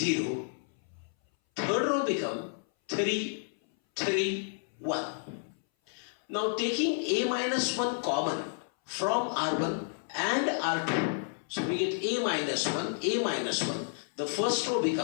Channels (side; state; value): right; silent; 57 dB below the other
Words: Third row becomes 3, 3, 1. Now taking a minus 1 common from R1 and R2, so we get a minus 1, a minus 1. The first row